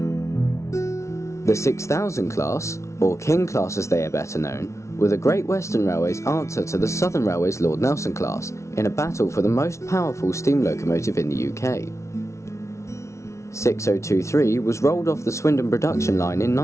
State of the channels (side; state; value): right; late; 0.14 ms